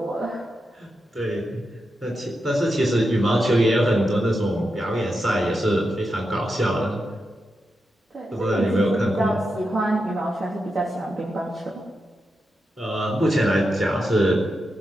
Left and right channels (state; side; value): normal; both; correlation 0.87